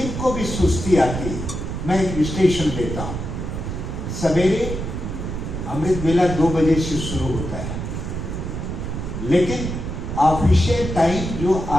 भी सुस्ती आती है, मैं एक विश्लेषण देता हूँ। सवेरे अमृत वेला 2 बजे से शुरू होता है, लेकिन ऑफिशियल टाइम जो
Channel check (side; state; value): right; noise; rumble, 5 dB below the sound